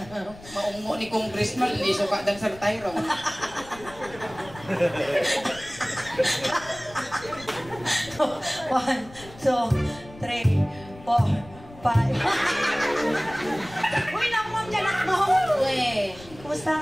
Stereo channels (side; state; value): left; noise; rumble, 19 dB below the sound